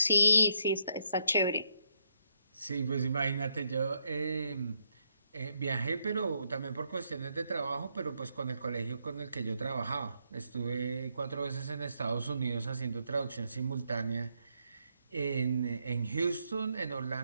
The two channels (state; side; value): inverted; both; correlation -0.76